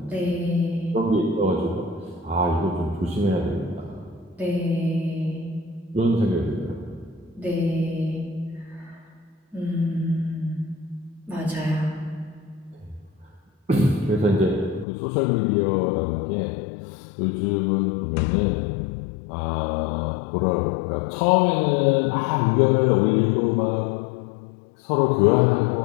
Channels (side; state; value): right; drops out; at 14.9 s